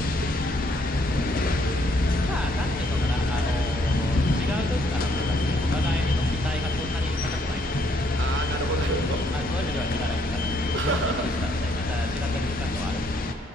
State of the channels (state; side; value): normal; both; correlation 0.69